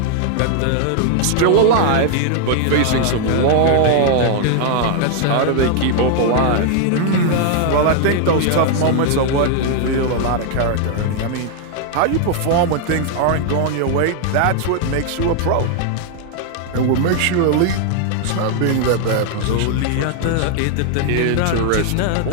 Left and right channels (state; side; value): different; both; correlation 0.00